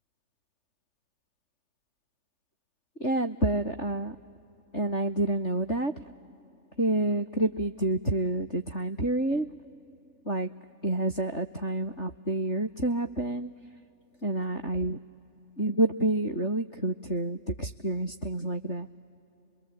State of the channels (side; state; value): right; late; 3.4 ms